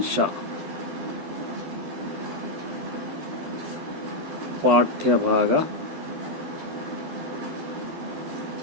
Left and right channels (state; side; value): late; left; 12 ms